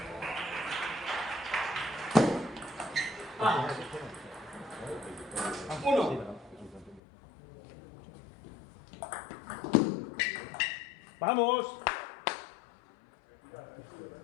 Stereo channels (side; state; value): right; drops out; at 7.0 s